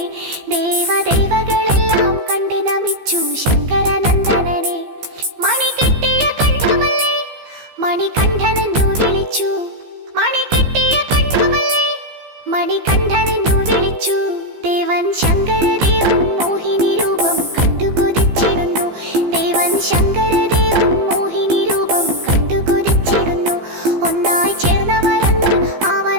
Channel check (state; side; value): late; left; 15 ms